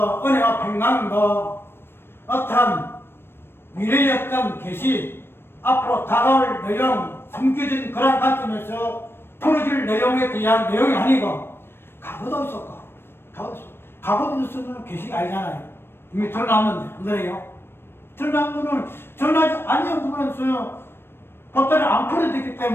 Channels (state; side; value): late; right; 0.11 ms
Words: 은혜와 평강도 어떠한 미래의 어떤 계시, 앞으로 다가올 내용, 숨겨진 그런 관점에서 풀어질 내용에 대한 내용이 아니고 과거도 있었고 과거도 있었으면 계시가 아니잖아요. 이미 드러났는데 안 그래요? 드러난 거는 드러나지 아니한 부분에서 보따리 안 풀어졌기